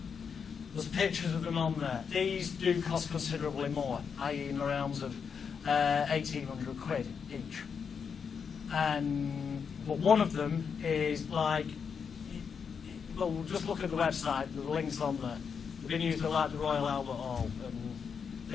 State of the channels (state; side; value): quieter; right; 6.4 dB